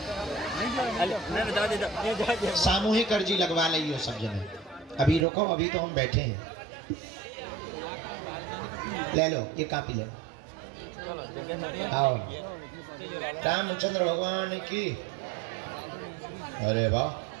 सामूहिक अर्जी लगवा लियो सब जने। अभी रुको, अभी तो हम बैठे हैं। ले लो ये कापी ले आओ। रामचंद्र भगवान की। अरे वाह,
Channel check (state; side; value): drops out; left; at 5.2 s